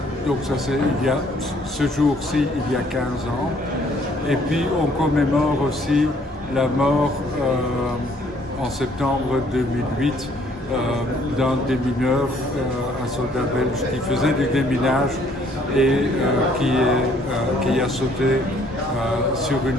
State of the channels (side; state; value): both; normal; correlation 0.63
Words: donc ça c'est ce jour-ci, il y a 15 ans. Et puis on commémore aussi la mort en septembre 2008 d'un démineur, un soldat belge qui faisait du déminage et qui a sauté sur